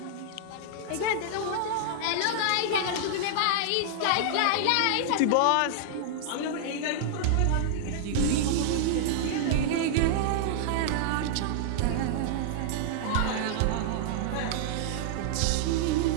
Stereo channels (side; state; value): both; different; correlation -0.01